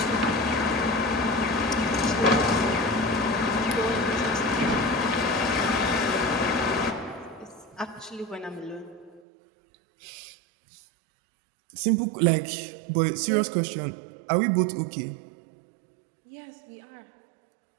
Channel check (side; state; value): left; drops out; at 9.2 s